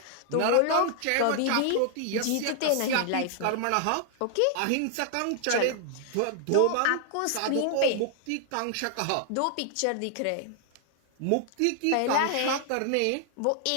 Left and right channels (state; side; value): different; both; correlation 0.00